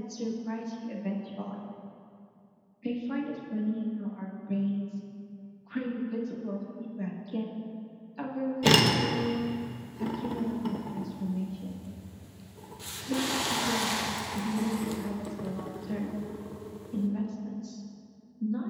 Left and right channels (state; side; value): identical; both; correlation 1.00